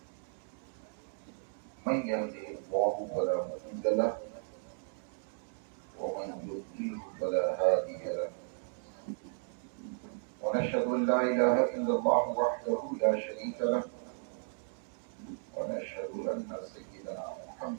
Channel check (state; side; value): silent; left; 55 dB below the other